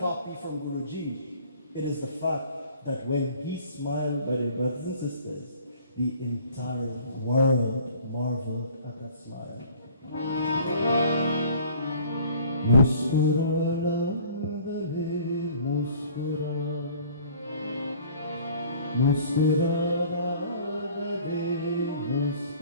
from Guruji, it is the fact that when he smiled, by their brothers and sisters, the entire world marveled at that smile. मुस्कुराना रहे मुस्कुरा मुस्कुराना रहे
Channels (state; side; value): inverted; both; correlation -0.52